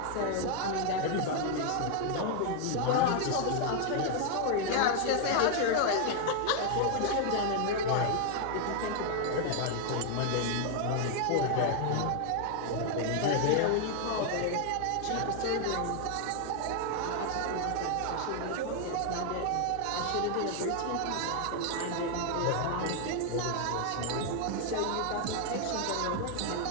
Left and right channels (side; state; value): both; different; correlation 0.00